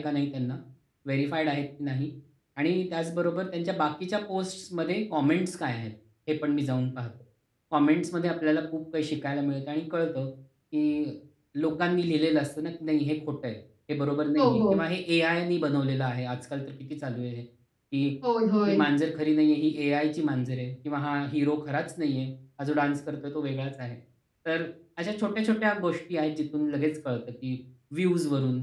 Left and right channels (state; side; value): identical; both; correlation 1.00